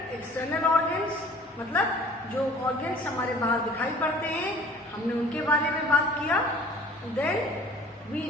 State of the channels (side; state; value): both; normal; correlation 0.49